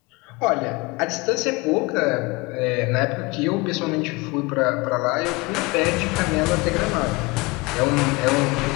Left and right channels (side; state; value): right; quieter; 25.0 dB